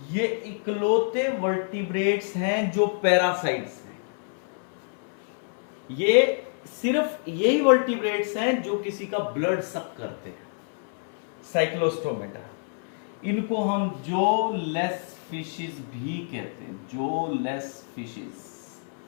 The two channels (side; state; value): right; silent; 60 dB below the other